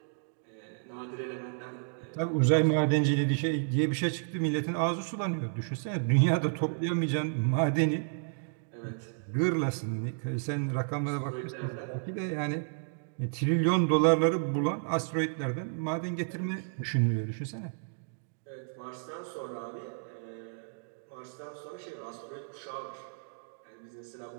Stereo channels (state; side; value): silent; left; digital silence